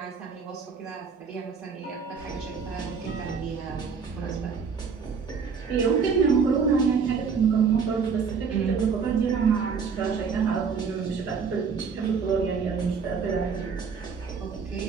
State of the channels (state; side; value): quieter; left; 5.8 dB